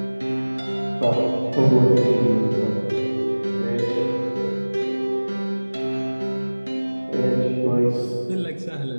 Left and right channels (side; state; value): both; inverted; correlation -1.00